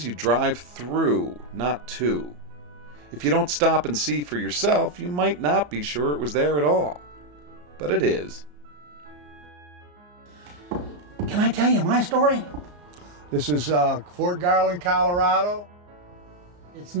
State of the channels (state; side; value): late; left; 34 ms